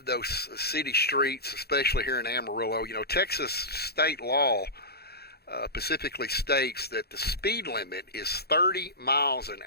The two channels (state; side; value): late; right; 0.46 ms